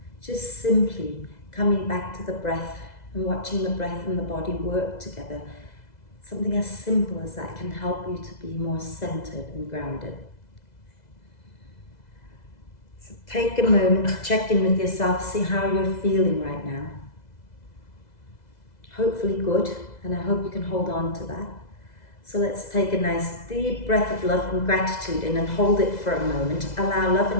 just simply coming back to the breath and watching the breath and the body work together. Something as simple as that can help you to be more centered and grounded. So take a moment to check in with yourself, see how you're feeling right now. Hopefully good, and I hope you can hold on to that. So let's take a nice deep breath of love and gratitude in and hold it for a moment. Allow love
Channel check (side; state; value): right; late; 2.0 ms